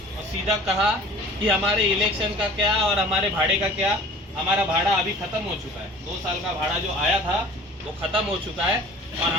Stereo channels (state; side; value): normal; both; correlation 0.45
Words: और सीधा कहा कि हमारे इलेक्शन का क्या और हमारे भाड़े का क्या। हमारा भाड़ा अभी ख़त्म हो चुका है, 2 साल का भाड़ा जो आया था वो ख़त्म हो चुका है। और